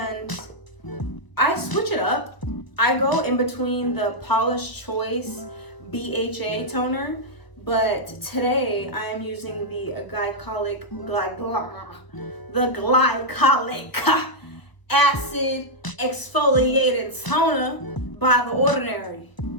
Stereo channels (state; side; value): late; right; 1.2 ms